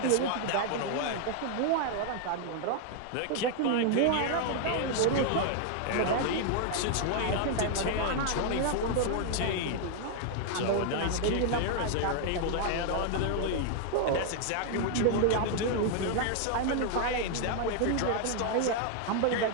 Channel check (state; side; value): different; both; correlation 0.00